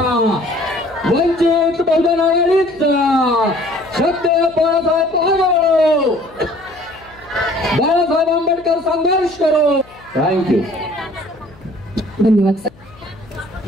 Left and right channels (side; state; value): left; noise; hum, 25 dB below the sound